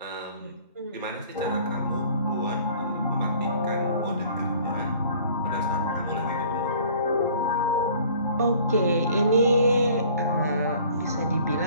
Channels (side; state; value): both; inverted; correlation -0.52